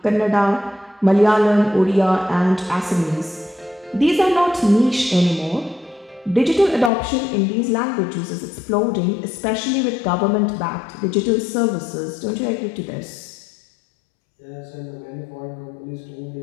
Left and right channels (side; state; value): right; drops out; at 6.9 s